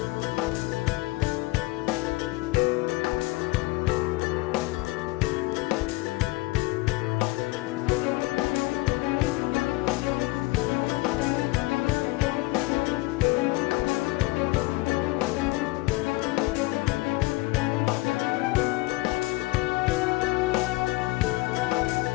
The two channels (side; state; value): right; quieter; 21.5 dB